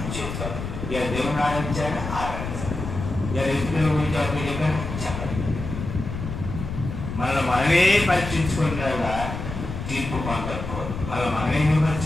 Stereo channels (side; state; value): left; noise; rumble, 7 dB below the sound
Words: చేసుకోవాలి, ఇలా దేవుని ఆరాధించాలని ఆరాధించాలి, ఇలా రైతుల గురించి అప్పుడు చెప్పాను చెప్పాలి. మనల్ని మనమే పరీక్షించుకునేలా తీర్పు పొందకపోదు. మనమే